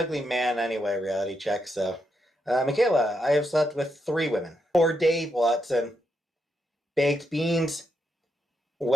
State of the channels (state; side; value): normal; both; correlation 0.81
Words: man anyway, reality check, so. Michaela, I have slept with 3 women. For Dave Watson, baked beans,